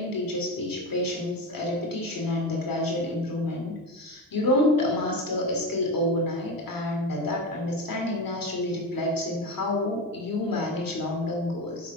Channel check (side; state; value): both; normal; correlation 0.20